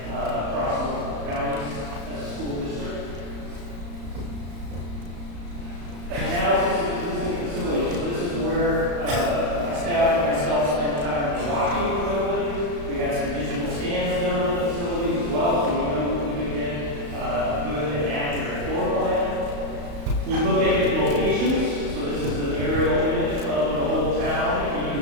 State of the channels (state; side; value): late; left; 35 ms